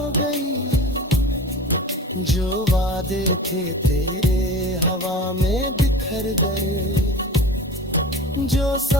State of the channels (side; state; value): both; normal; correlation 0.36